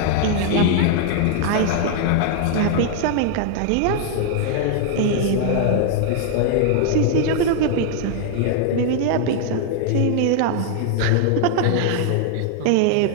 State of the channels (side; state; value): both; different; correlation 0.00